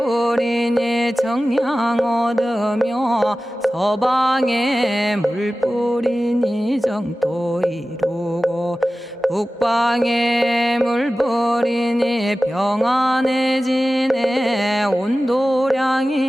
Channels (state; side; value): normal; both; correlation 0.96